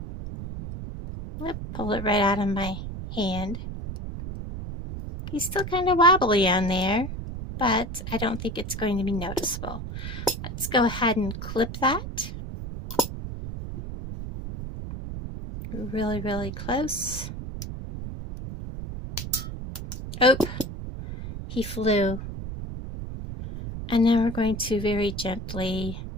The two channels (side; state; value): right; noise; rumble, 7 dB below the sound